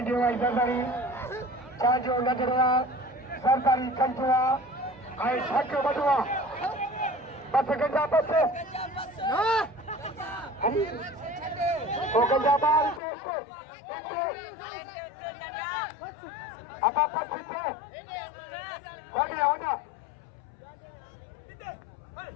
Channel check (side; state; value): right; drops out; at 13.0 s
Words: आई सरकारी चांजो नजरुआ सरकारी कंचुआ आई छक्के बटुआ बस गंजा बच्चे वो गंजा बाल से apa pasti kau ni awak